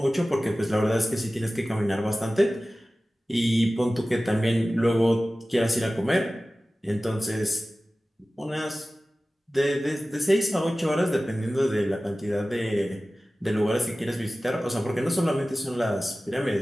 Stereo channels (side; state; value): both; normal; correlation 0.96